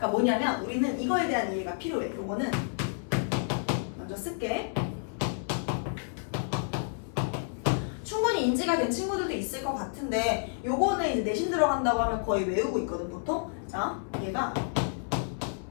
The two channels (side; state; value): right; silent; 58 dB below the other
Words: 뭐냐면 우리는 이거에 대한 이해가 필요해. 요거는 먼저 쓸게. 충분히 인지가 된 친구들도 있을 것 같은데 요거는 이제 내신 들어간다고 하면 거의 외우고 있거든 보통. 자, 얘가